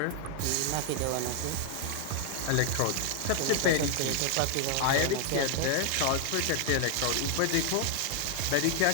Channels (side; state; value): both; different; correlation 0.00